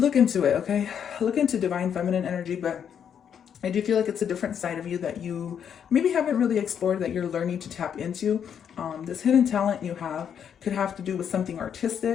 into it, okay? Look into divine feminine energy, but I do feel like it's a different side of you that you maybe haven't really explored, that you're learning to tap into. This hidden talent you have could have to do with something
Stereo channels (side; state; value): right; quieter; 8.2 dB